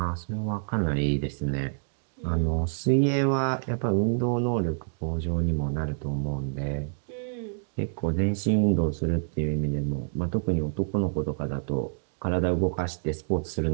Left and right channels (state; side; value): silent; left; digital silence